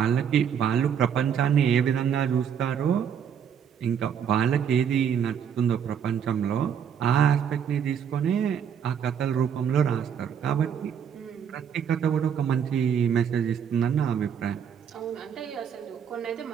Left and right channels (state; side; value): quieter; left; 8.0 dB